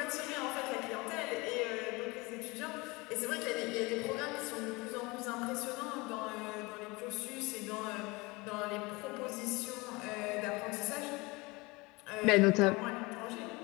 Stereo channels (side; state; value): right; quieter; 24.6 dB